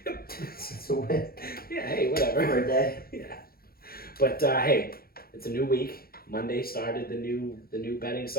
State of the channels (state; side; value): late; right; 0.44 ms